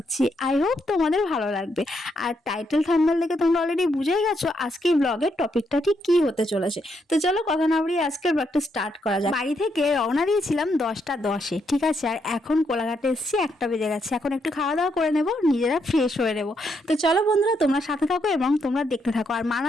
আই হোপ তোমাদের ভালো লাগবে। আর টাইটেল থাম্বনেল দেখে তোমরা অলরেডি বুঝেই গেছো আজকের ব্লগের টপিকটা ঠিক কী হতে চলেছে। তো চলো কথা না বাড়িয়ে আজকের ব্লগটা স্টার্ট করা যায়। বাড়ি থেকে রওনা দিয়েছিলাম 10টা 10-এ, ঠিক আছে? আর এখন কোলাঘাটে এসেছি, 1টা বেজে গেছে। এখন একটু খাওয়া দাওয়া করে নেবো, নিজেরা ফ্রেশ হয়ে নেবো। তো চলো বন্ধুরা, তোমরা সাথে থাকো এবং তোমরা দেখতে থাকো। আর মানা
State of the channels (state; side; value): normal; both; correlation 0.77